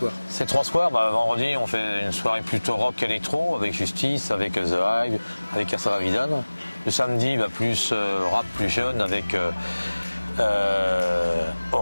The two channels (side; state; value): both; inverted; correlation -1.00